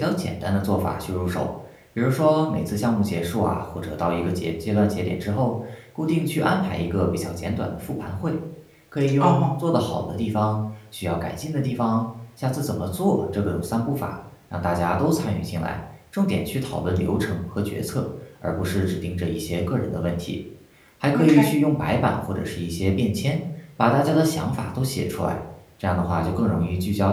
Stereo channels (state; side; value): identical; both; correlation 1.00